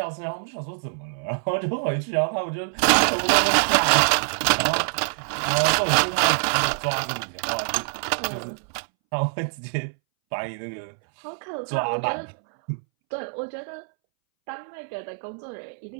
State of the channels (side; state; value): left; silent; 62 dB below the other